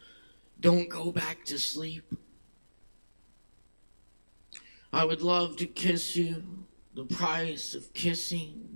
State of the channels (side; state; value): both; inverted; correlation -1.00